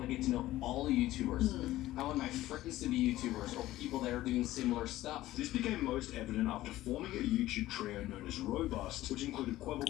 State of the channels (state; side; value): quieter; right; 15.7 dB